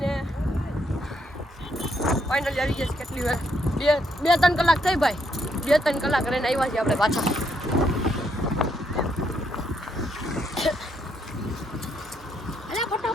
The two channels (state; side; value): normal; both; correlation 0.74